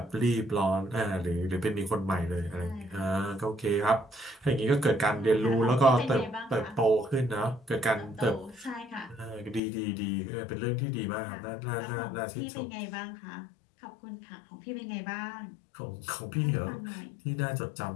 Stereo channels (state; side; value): drops out; right; at 9.6 s